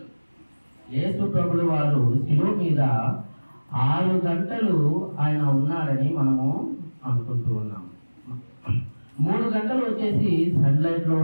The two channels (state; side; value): inverted; both; correlation -1.00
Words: యేసు ప్రభుల వారు శిలువ మీద 6 గంటలు ఆయన ఉన్నాడని మనము అనుకుంటూ ఉన్నాము. 3 గంటలు వచ్చేసి సన్లైట్ లో